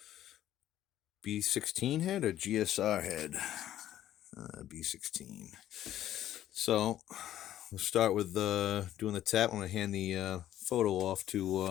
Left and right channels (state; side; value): quieter; right; 12.4 dB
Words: B16 head or GSR head. B16. So we'll start with doing the tap. I'm going to hand the photo off